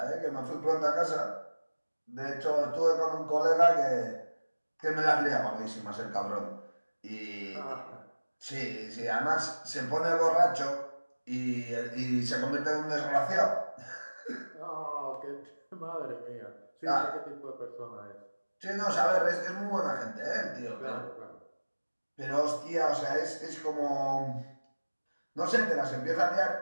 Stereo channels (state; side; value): inverted; both; correlation -1.00